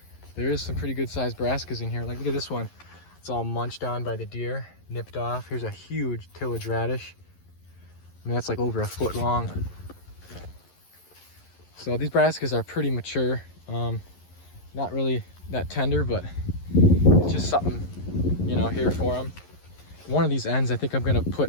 there is some pretty good sized brassicas in here. Like, look at this one. It's all munched on by the deer, nipped off. Here's a huge tillage radish. I mean, that's like over a foot long. So these brassicas are pretty mature. Not really that tender, but it's just something, you know, here for them. One of these ends, I think I'm gonna put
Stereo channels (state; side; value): late; right; 11 ms